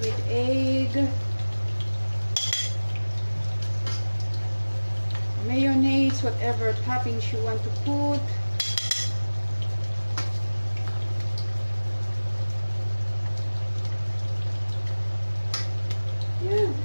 with egg, mayonnaise, whatever toppings you want to put. Yeah,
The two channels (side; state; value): both; inverted; correlation -1.00